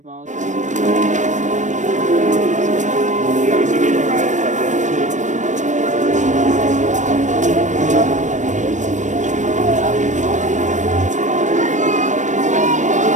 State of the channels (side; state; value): left; late; 0.35 ms